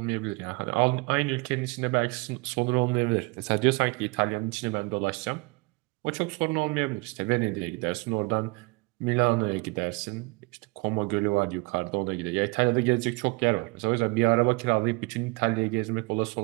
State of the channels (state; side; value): quieter; left; 27.7 dB